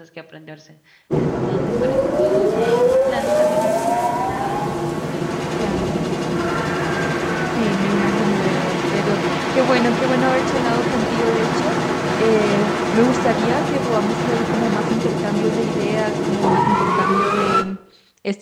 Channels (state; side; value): identical; both; correlation 1.00